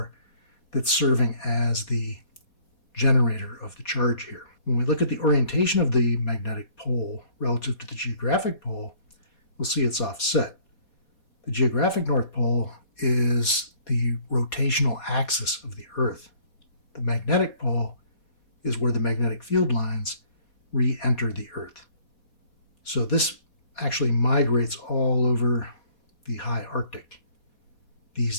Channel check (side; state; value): right; late; 4.2 ms